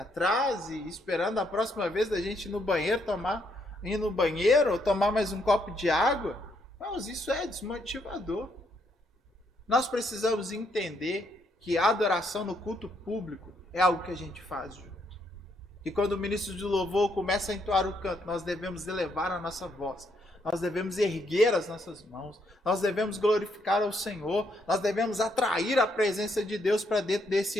trás e esperando a próxima vez da gente ir no banheiro ou tomar mais um copo de água. Mas isso é desmotivador. Nós precisamos entender que a adoração no culto público é algo que a gente faz junto. E quando o ministro de louvor começa a entoar o canto, nós devemos elevar a nossa voz. Nós devemos erguer as nossas mãos, nós devemos glorificar ao Senhor, nós devemos atrair a presença de Deus para dentro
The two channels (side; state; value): both; normal; correlation 0.74